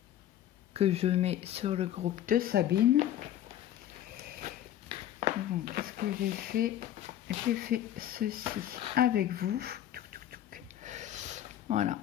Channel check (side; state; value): right; quieter; 11.8 dB